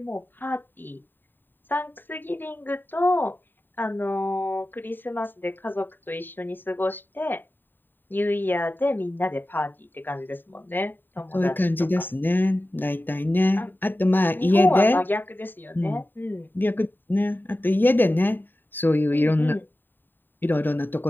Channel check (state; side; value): late; right; 0.093 ms